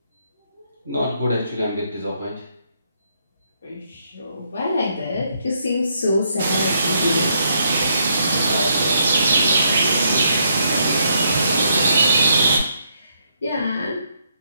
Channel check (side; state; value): both; inverted; correlation -0.74